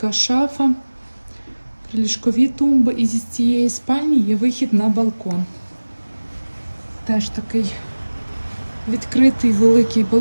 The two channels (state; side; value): inverted; both; correlation -1.00